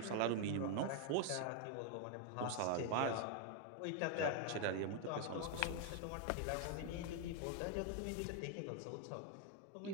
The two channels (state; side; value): different; both; correlation 0.01